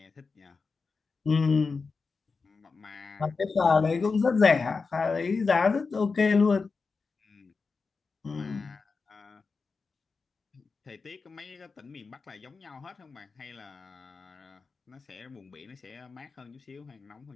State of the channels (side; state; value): right; quieter; 4.6 dB